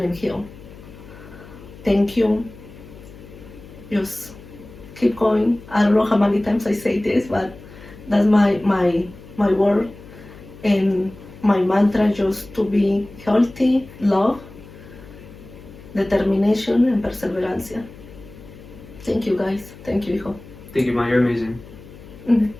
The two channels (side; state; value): left; noise; hum, 19 dB below the sound